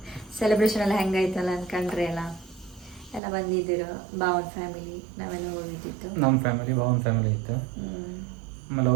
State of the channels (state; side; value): drops out; left; at 3.2 s